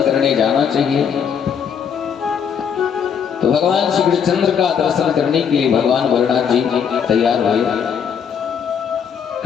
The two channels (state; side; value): quieter; right; 7.4 dB